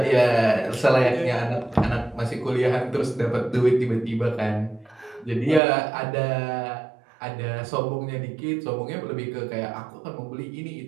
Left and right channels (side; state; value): left; drops out; at 5.6 s